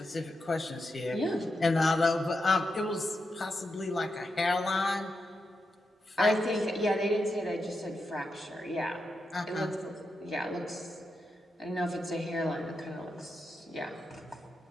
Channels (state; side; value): normal; both; correlation 0.86